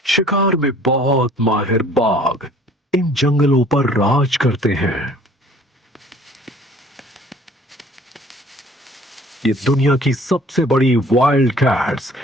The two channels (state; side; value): normal; both; correlation 0.53